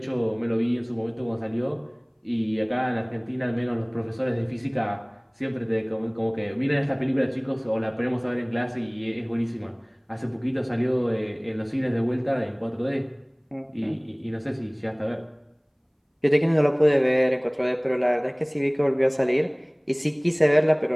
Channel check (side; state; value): both; identical; correlation 1.00